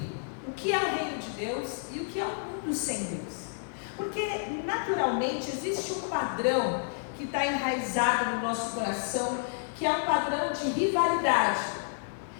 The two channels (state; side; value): silent; right; digital silence